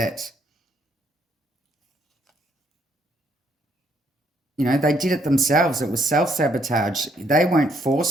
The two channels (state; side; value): normal; both; correlation 0.70